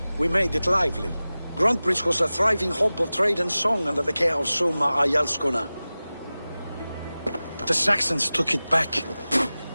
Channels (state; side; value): inverted; both; correlation -0.97